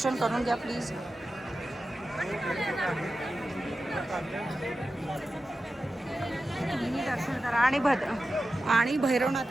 करून घ्या प्लीज. तुम्ही दर्शन करा आणि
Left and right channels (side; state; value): both; normal; correlation 0.93